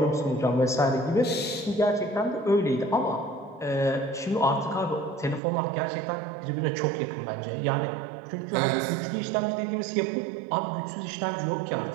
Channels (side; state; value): left; drops out; at 5.4 s